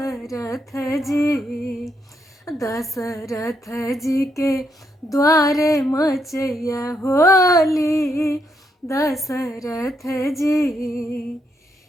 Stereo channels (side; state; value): both; normal; correlation 0.77